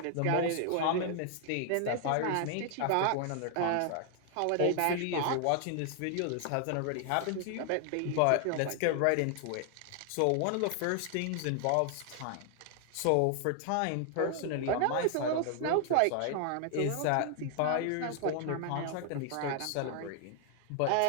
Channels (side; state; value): both; different; correlation 0.00